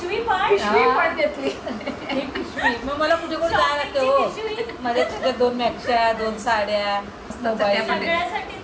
पण पिशवी पण घेतली. ही पिशवी मग मला कुठे कुठे जायला लागते हो. पिशवी. माझ्या तुझ्या 2 मॅक्शा, 2 साड्या, मोबाईल.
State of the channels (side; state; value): both; identical; correlation 1.00